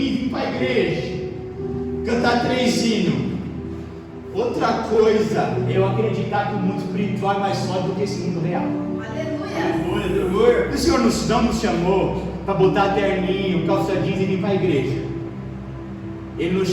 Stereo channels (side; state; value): both; identical; correlation 1.00